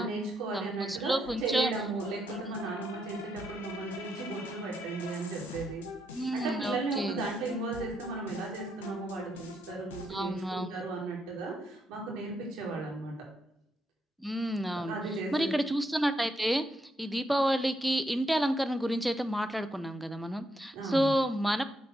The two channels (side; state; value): both; normal; correlation 0.78